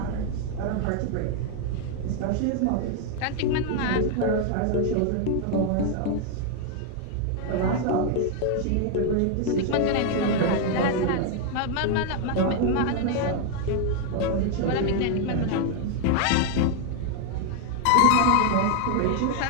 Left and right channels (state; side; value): different; both; correlation 0.00